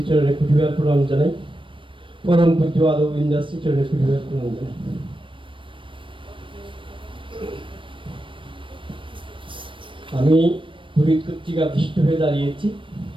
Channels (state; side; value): late; left; 0.25 ms